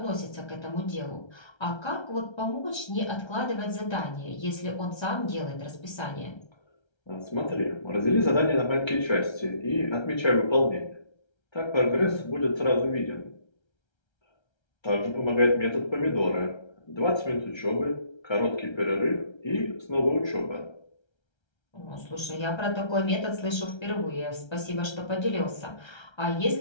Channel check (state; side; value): late; right; 1.3 ms